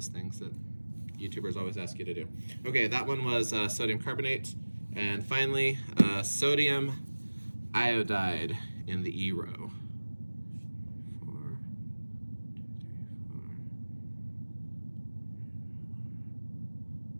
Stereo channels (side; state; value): both; inverted; correlation -1.00